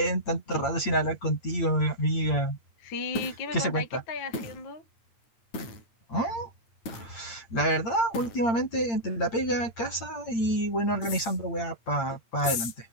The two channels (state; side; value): late; right; 9.0 ms